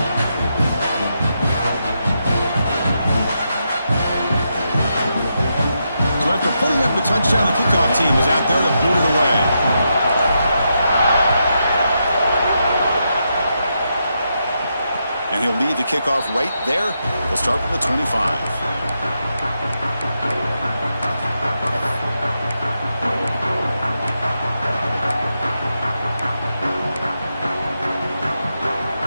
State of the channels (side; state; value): both; inverted; correlation -0.84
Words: After putting up the touchdown, the kickoff team is out there to boot it away. And he'll lead the kickoff right there. He'll start from the 25.